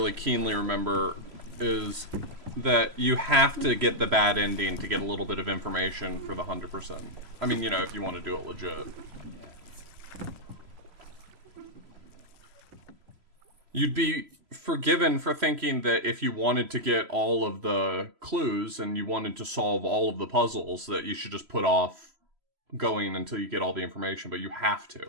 keenly remember, is that you have to get the bad ending to get a little bit of information for the 100%. I mean, you know, if you want to do it legit. You'd be forgiven for thinking that if you wanted to get all of the clues and you wanted to solve all of the puzzles, that you should just put off going until you get all the information, but you have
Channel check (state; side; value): late; left; 3.0 ms